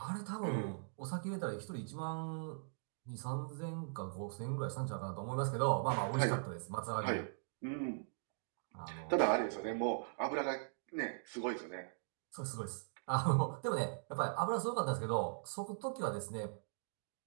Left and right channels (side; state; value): left; silent; digital silence